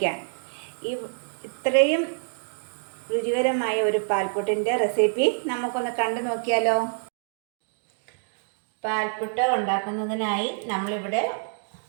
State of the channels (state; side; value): silent; left; digital silence